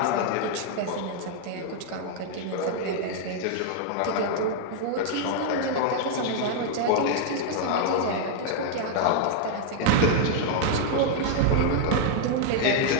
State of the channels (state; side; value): different; both; correlation 0.00